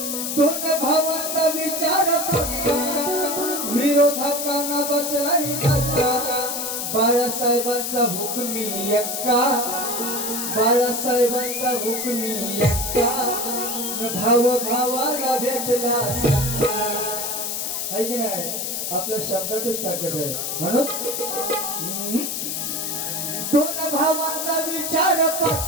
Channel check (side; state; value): left; noise; hiss, 2 dB below the sound